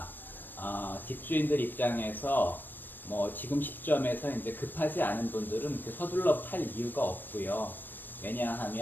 집주인들 입장에서 지금 시점에서 이제 급하지 않은 분들은 서둘러 팔 이유가 없고요.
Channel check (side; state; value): right; late; 0.092 ms